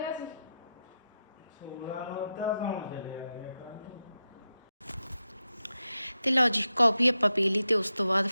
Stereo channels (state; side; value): inverted; both; correlation -0.89